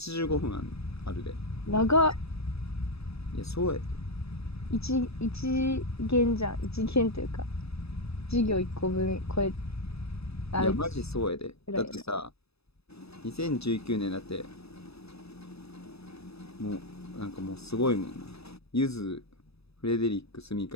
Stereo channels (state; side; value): late; right; 0.78 ms